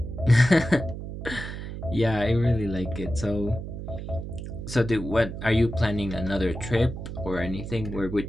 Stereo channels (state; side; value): noise; right; hum, 8 dB below the sound